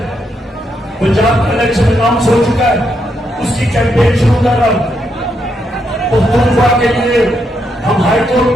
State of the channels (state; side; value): normal; both; correlation 0.79